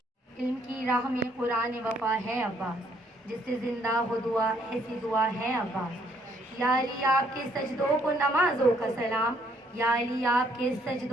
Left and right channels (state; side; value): normal; both; correlation 0.68